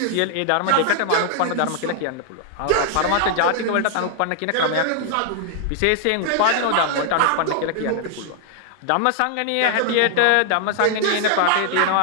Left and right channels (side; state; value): both; different; correlation 0.00